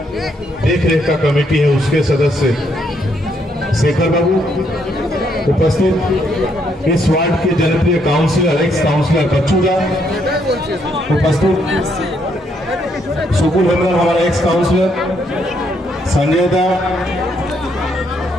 देखरेख का कमेटी है उसके सदस्य शेखर बाबू, उपस्थित इस वार्ड के जनप्रिय काउंसिलर एक्स काउंसिलर बच्चूदा, उपस्थित सुकुल हेमराम हमारा एक्स काउंसिलर, संजय दा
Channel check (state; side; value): normal; both; correlation 0.73